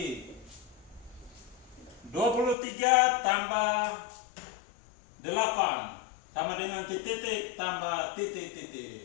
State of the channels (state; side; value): drops out; right; at 2.6 s